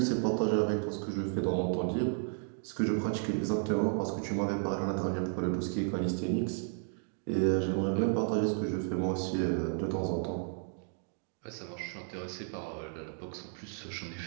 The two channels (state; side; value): silent; left; 56 dB below the other